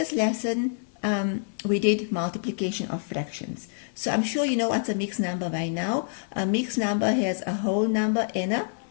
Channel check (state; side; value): silent; right; 60 dB below the other